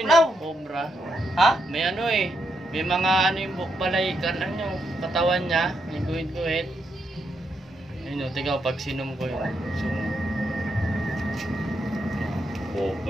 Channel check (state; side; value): normal; both; correlation 0.80